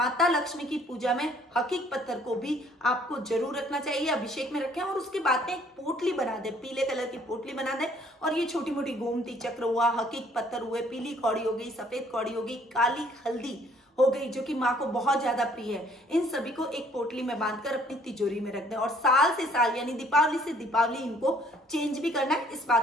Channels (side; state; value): both; normal; correlation 0.60